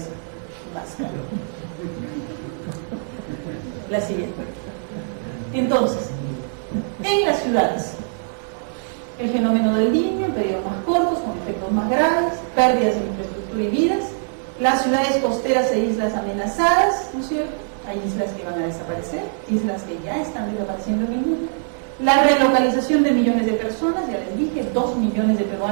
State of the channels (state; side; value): silent; left; digital silence